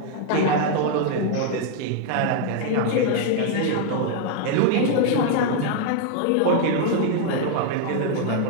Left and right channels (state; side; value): different; both; correlation 0.00